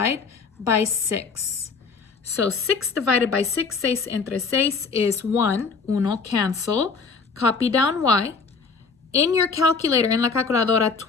by 6. So 6 divided by 6, 6 entre 6 is 1. Uno, cancel. Copy down y. In your calculator, en la calculadora,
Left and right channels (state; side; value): quieter; right; 4.9 dB